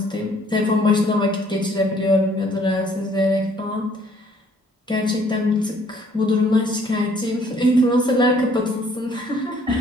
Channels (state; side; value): normal; both; correlation 0.61